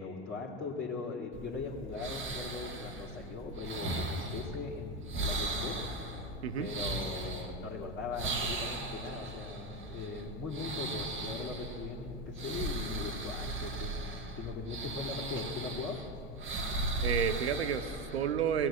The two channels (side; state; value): both; normal; correlation 0.14